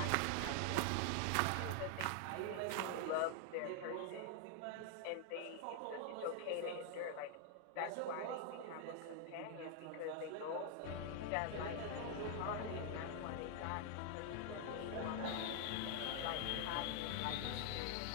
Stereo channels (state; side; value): different; both; correlation 0.00